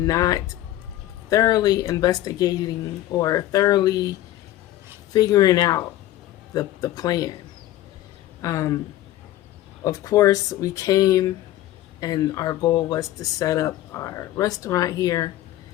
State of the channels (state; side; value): quieter; right; 14.4 dB